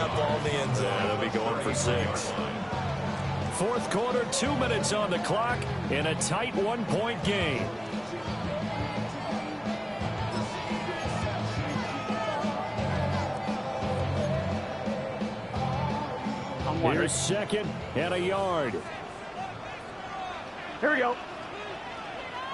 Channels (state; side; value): identical; both; correlation 1.00